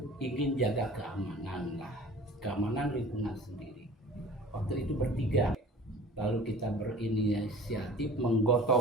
ingin jaga keamanan lah, keamanan lingkungan sendiri. Waktu itu bertiga, lalu kita berinisiatif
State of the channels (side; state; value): both; normal; correlation 0.43